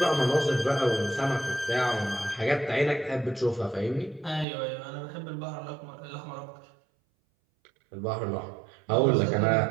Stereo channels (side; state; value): left; drops out; at 4.5 s